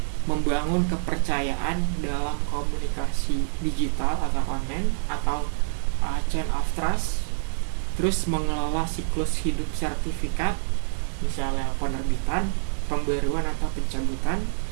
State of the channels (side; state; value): left; silent; digital silence